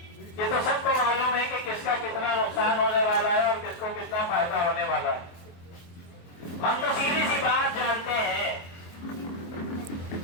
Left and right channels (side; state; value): right; late; 23 ms